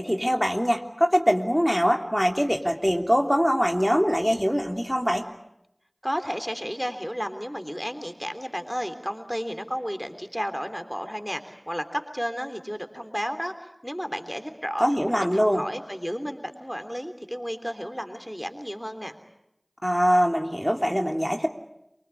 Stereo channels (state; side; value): identical; both; correlation 1.00